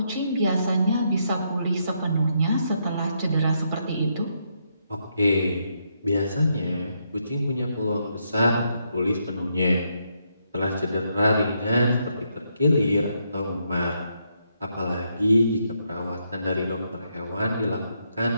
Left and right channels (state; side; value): inverted; both; correlation -0.78